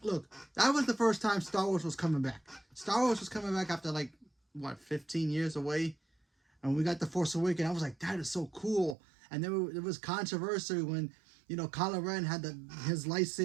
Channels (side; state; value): left; drops out; at 9.0 s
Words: Look, that was the first time Star Wars was coming back. Star Wars was coming back after like, what, 15 years away? And we got The Force Awakens. I was like, that is so cool. And there was controversy when, you know, Kylo Ren had his